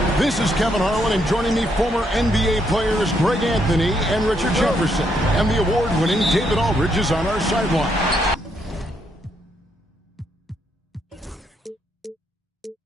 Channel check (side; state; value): both; normal; correlation 0.75